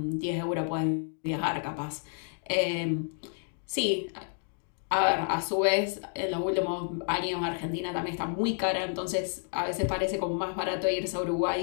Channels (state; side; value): silent; right; 57 dB below the other